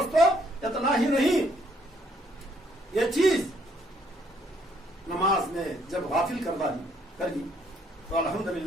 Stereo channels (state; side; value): normal; both; correlation 0.68